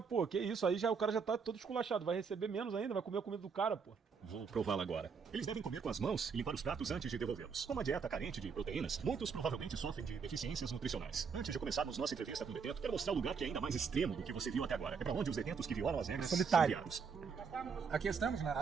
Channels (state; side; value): quieter; left; 5.8 dB